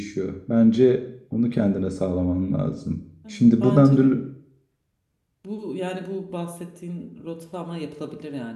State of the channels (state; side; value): identical; both; correlation 1.00